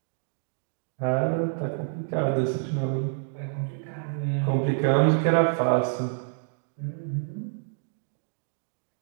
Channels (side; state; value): left; silent; digital silence